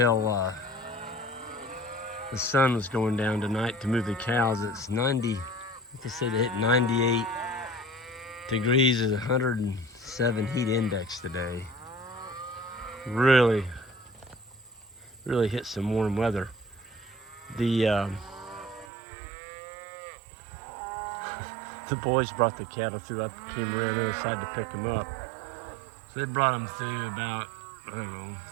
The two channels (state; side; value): drops out; left; at 18.9 s